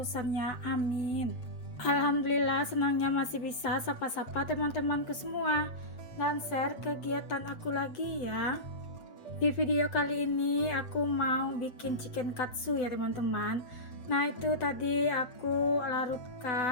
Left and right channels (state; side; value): late; right; 7.9 ms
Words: Amin. Alhamdulillah, senangnya masih bisa sapa-sapa teman-temanku semua dan share kegiatan aku lagi ya. Di video kali ini aku mau bikin chicken katsu ya teman-teman. Nah itu tadi aku